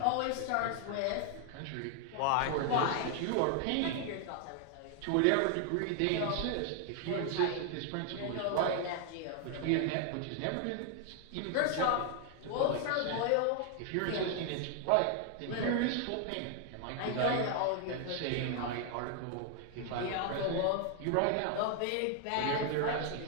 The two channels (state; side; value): different; both; correlation 0.00